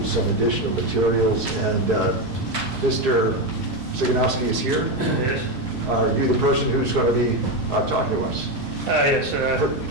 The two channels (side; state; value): both; normal; correlation 0.11